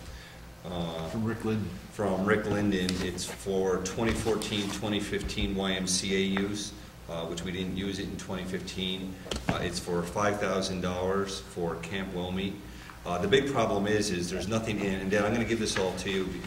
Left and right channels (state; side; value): identical; both; correlation 1.00